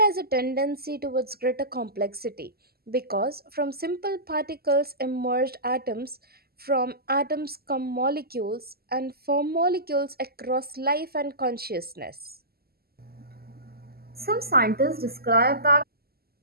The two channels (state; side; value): late; left; 0.45 ms